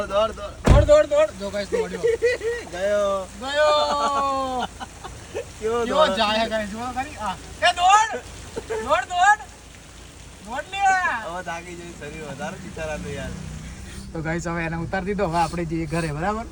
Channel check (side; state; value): both; identical; correlation 1.00